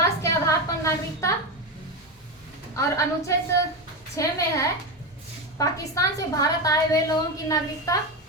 के आधार पर नागरिकता, और अनुच्छेद 6 में है पाकिस्तान से भारत आए हुए लोगों की नागरिकता,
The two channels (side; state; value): both; normal; correlation 0.15